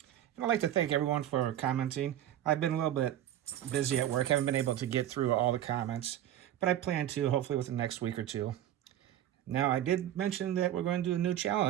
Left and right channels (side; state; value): left; quieter; 11.9 dB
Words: And I'd like to thank everyone for commenting. I've been a little bit busy at work. Haven't been able to get through all the comments. But I plan to, hopefully within the next week or two. Now, I did mention that we're going to do a new